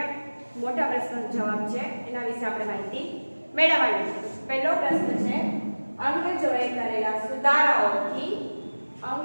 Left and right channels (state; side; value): inverted; both; correlation -1.00